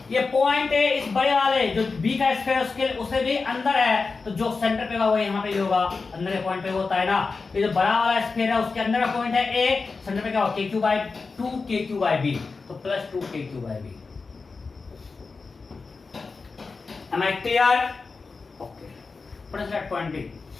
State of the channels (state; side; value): quieter; right; 4.3 dB